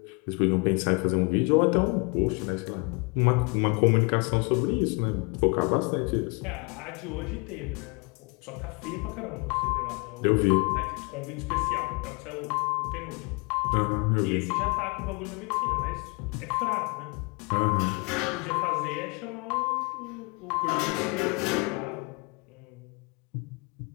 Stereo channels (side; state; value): right; quieter; 30.3 dB